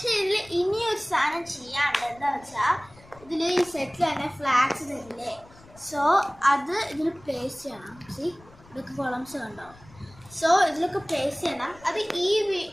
ഇതിൽ ഇനിയൊരു സാധനം ചെയ്യാണ്ട്. എന്താ വെച്ചാൽ ഇതിൽ ഈ സെറ്റിൽ തന്നെ ഫ്ലാഗ്സ് തരില്ലേ? സോ അത് ഇതിൽ പ്ലേസ് ചെയ്യണം. ഇതൊക്കെ കോളംസ് കണ്ടോ? സോ ഇതിലൊക്കെ പ്ലേസ് ചെയ്യണം. അത് ഈ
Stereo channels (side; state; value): left; noise; rumble, 24 dB below the sound